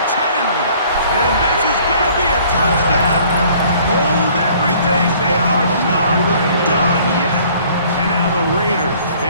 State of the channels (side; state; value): both; inverted; correlation -0.56